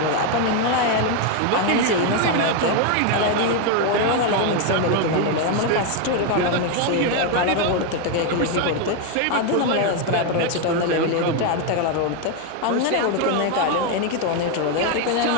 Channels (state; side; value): different; both; correlation 0.02